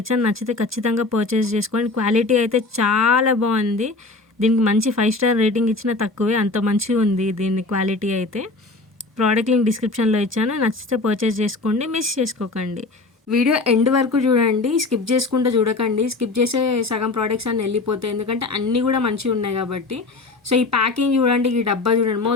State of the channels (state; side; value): quieter; right; 3.4 dB